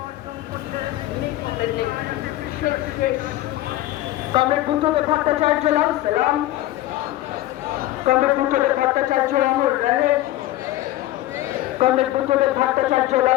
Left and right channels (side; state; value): right; quieter; 15.5 dB